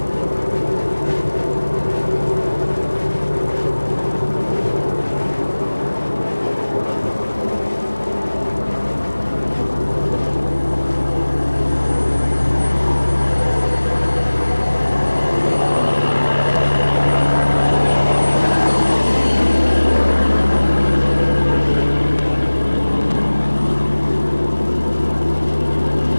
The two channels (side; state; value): both; inverted; correlation -1.00